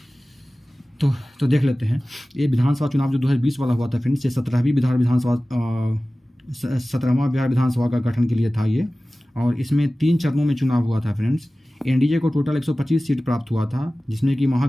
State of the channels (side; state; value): both; normal; correlation 0.97